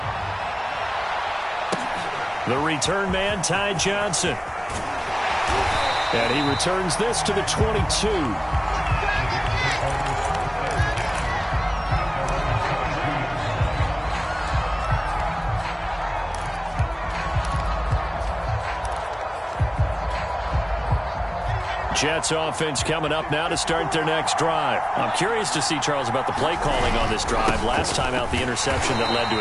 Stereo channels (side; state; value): both; identical; correlation 1.00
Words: The return man, Ty Johnson. And he returns this to the 22. Jets offense coming up now to start their next drive. I'm curious to see, Charles, about the play calling on this drive. Last time out, the interception that led to